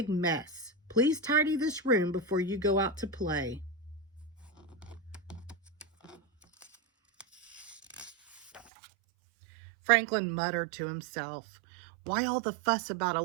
mess. Please tidy this room before you go out to play." Franklin muttered to himself, "Why all the fuss about a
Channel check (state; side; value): drops out; left; at 8.7 s